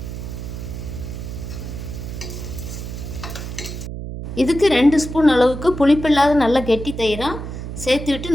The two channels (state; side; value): noise; right; hum, 8 dB below the sound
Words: இதுக்கு 2 ஸ்பூன் அளவுக்கு புளிப்பில்லாத நல்ல கெட்டி தயிராக சேர்த்து